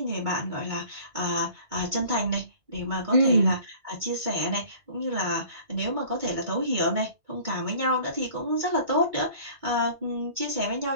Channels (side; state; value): left; late; 2.2 ms